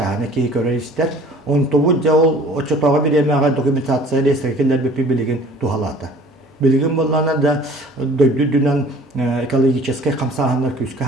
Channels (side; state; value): both; normal; correlation 0.50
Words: ки көрөйстер. Он тобу жол отчетага беремега документация реестрге келер билеген тухалата. Bilgin bollarına da döydüdünen ekologический камсаһаннар күскә